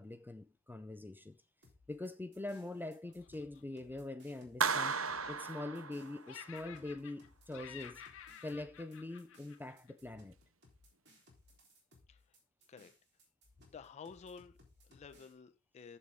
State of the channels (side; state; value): both; normal; correlation 0.43